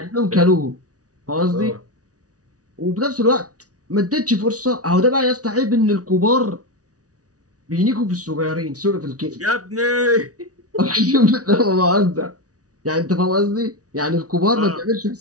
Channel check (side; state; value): left; late; 0.67 ms